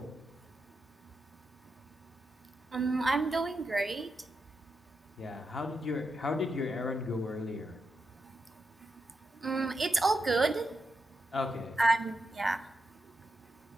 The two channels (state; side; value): normal; both; correlation 0.86